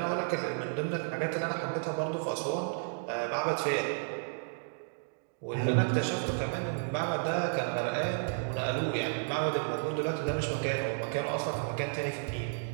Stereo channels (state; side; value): silent; left; digital silence